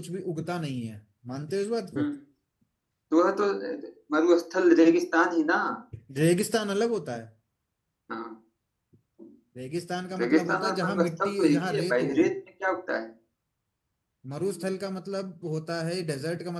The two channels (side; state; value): both; identical; correlation 1.00